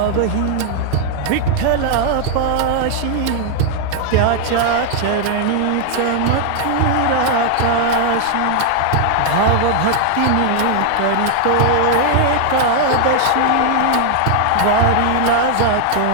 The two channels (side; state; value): both; different; correlation 0.00